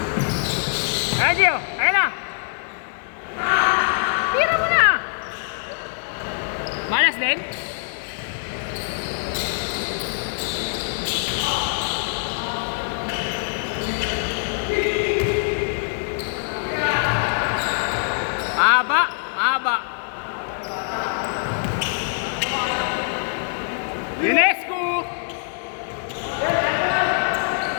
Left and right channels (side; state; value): right; silent; 56 dB below the other